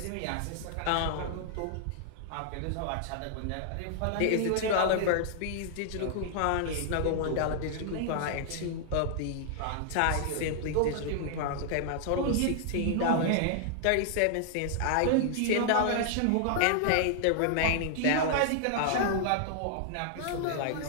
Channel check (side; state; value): both; different; correlation -0.01